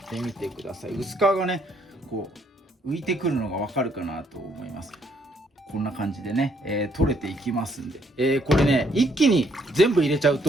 てみてください。薄皮がねこう浮いてくるのがわかるかなと思います。こんな感じでね、取れていきますんで、これね一気に全部入れちゃう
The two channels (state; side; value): normal; both; correlation 0.69